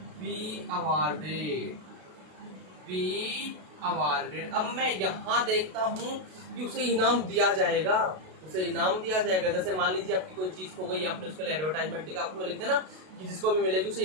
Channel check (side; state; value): left; late; 32 ms